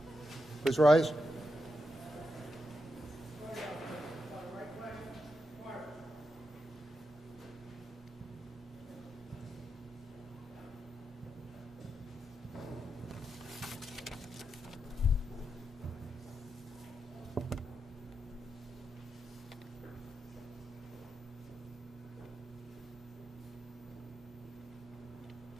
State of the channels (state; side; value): normal; both; correlation 0.86